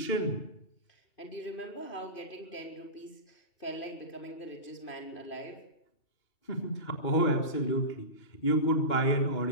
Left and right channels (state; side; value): late; right; 2.7 ms